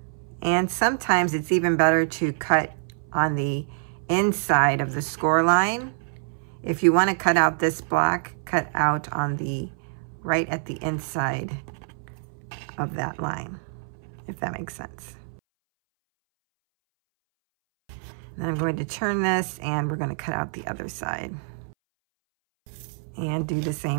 and sometimes it's even better to cut on the inside of the score line. If you want to cut out this block, cut out on the right at the inside of that line, if that makes sense. Then I'm going to turn this and we're going to cut out the other side. And do the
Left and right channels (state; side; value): silent; left; 61 dB below the other